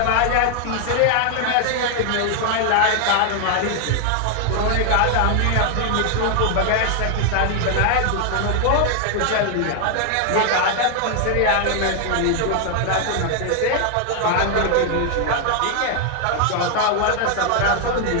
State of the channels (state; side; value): different; both; correlation 0.00